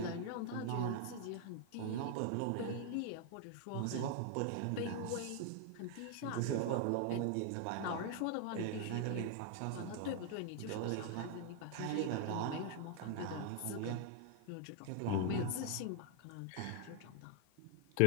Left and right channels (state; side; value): different; both; correlation 0.00